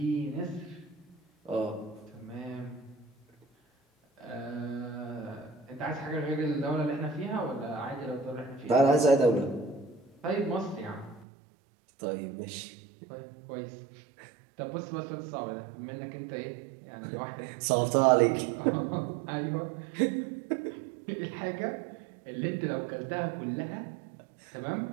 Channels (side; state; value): left; drops out; at 11.2 s